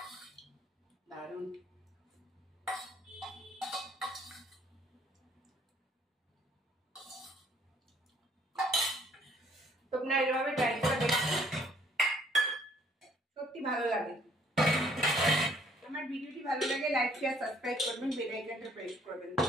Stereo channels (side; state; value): both; normal; correlation 0.62